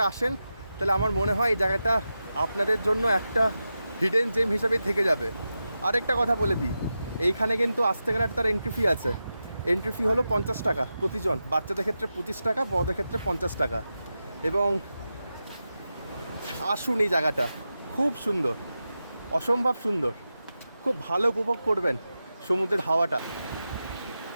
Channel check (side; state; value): both; inverted; correlation -0.91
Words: আসেন, তাহলে আমার মনে হয় এই জায়গাটা আপনাদের জন্য একটা হিডেন জেম হিসাবেই থেকে যাবে। আরেকটা কথা বলে দিই, এইখানে কিন্তু আসতে গেলে তার এন্ট্রি ফি আছে। এন্ট্রি ফি হলো 50 টাকা প্রতিজন, বাচ্চাদের ক্ষেত্রে 25 টাকা, বড়দের ক্ষেত্রে 50 টাকা। এবং আসুন, এই জায়গাটা খুব সুন্দর, অসম্ভব সুন্দর, খুব ভালো উপভোগ করবেন সমুদ্রের হাওয়াটা।